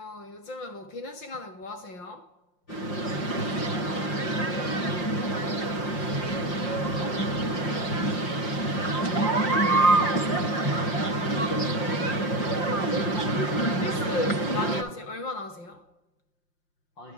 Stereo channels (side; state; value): right; late; 5.7 ms